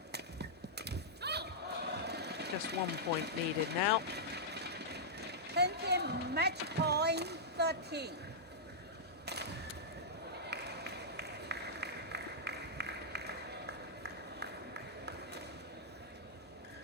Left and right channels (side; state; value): both; normal; correlation -0.11